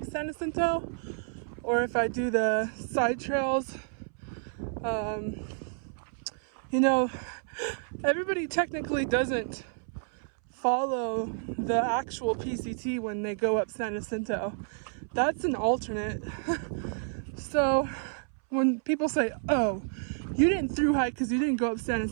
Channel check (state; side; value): silent; left; 58 dB below the other